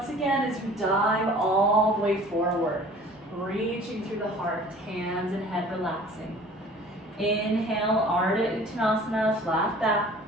again as you dive all the way forward. Reaching through the heart, hands and head relaxing. Inhale, Ardha Uttanasana, flat back.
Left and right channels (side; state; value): both; normal; correlation 0.48